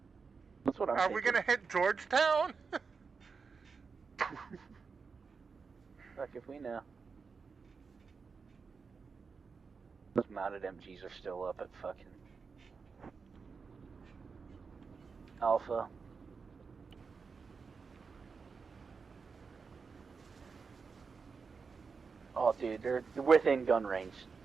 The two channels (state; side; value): quieter; left; 5.1 dB